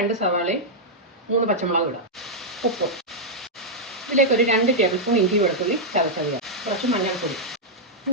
സവാളയും 3 പച്ചമുളകും ഇടാം. ഉപ്പ്. ഇതിലേക്ക് ഒരു 2 ടേബിൾ സ്പൂൺ ഇഞ്ചി വെളുത്തുള്ളി ചതച്ചത്, കുറച്ച് മഞ്ഞൾപ്പൊടി.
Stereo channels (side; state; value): both; normal; correlation -0.06